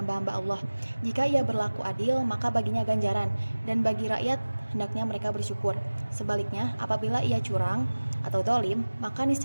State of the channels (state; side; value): inverted; both; correlation -1.00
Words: Allah. Jika ia berlaku adil, maka baginya ganjaran, dan bagi rakyat hendaknya mereka bersyukur. Sebaliknya, apabila ia curang atau zalim, maka